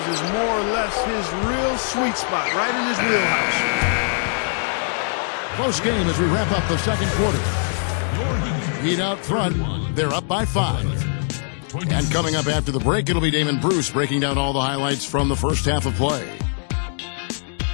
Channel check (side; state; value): right; silent; digital silence